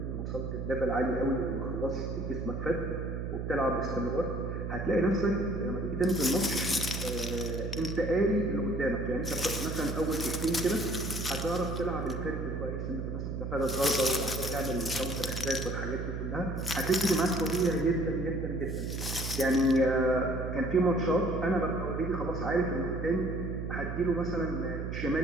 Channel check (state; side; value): noise; right; hum, 4 dB below the sound